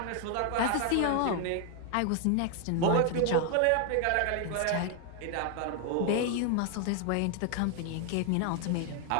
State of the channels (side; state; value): both; different; correlation 0.00